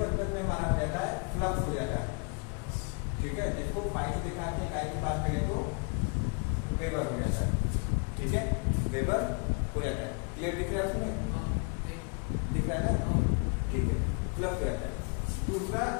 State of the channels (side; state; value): right; quieter; 36.5 dB